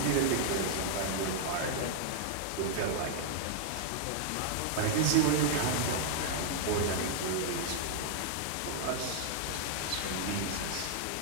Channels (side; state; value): both; different; correlation -0.01